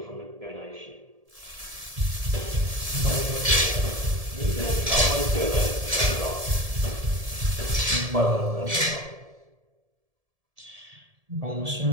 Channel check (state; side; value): late; left; 1.7 ms